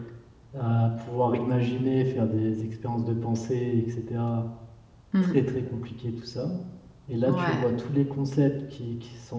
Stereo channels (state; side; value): identical; both; correlation 1.00